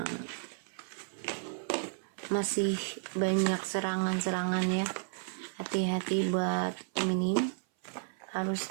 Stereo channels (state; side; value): silent; left; 56 dB below the other